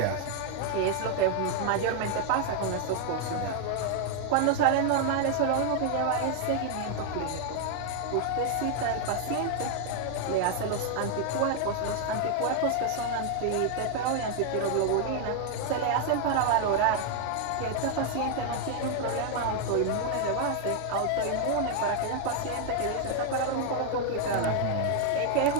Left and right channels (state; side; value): different; both; correlation 0.00